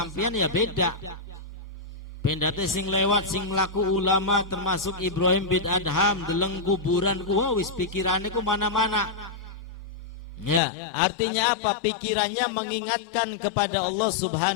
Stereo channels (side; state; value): right; drops out; at 10.6 s